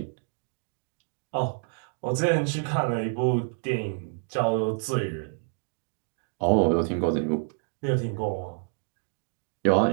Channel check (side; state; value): left; silent; 58 dB below the other